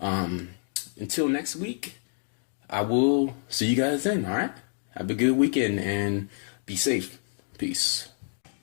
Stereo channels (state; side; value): silent; right; digital silence